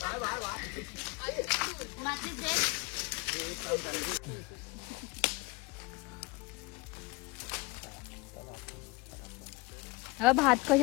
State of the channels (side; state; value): right; quieter; 23.5 dB